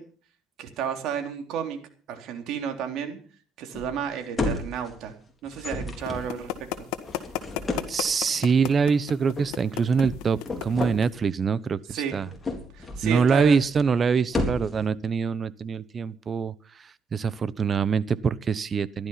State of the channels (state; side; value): quieter; left; 4.5 dB